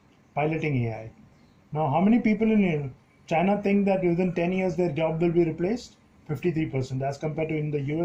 piloting AI. Now, how many people in China think that within 10 years their job will be replaced? 53%, as compared to in the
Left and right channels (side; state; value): both; identical; correlation 1.00